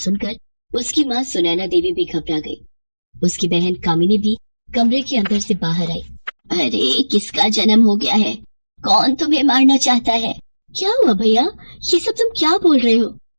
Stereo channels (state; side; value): inverted; both; correlation -1.00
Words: उसकी माँ सुनैना देवी भी घबरा गई। उसकी बहन कामिनी भी कमरे के अंदर से बाहर आई। अरे किसका जन्म हो गया है? कौन तुम्हें मारना चाहता है? क्या हुआ भैया, ये सब तुम क्या बोल रहे हो?